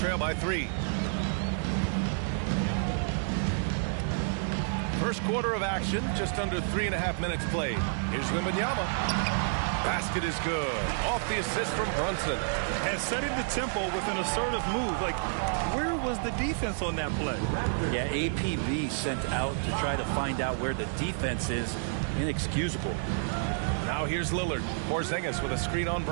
by 3. First quarter of action, just under 3.5 minutes played. Here's Wembanyama. Basket is good. Off the assist from Brunson. And setting the tempo with an assertive move. Like, where was the defense on that play? Yeah, APB sent out to try to find out where the defense is. Inexcusable. Now here's Lillard. Porzingis with a screen on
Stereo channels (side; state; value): left; silent; digital silence